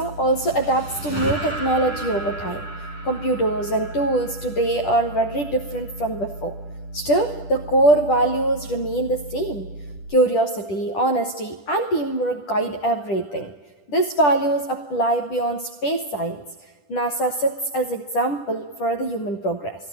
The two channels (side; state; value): right; late; 10 ms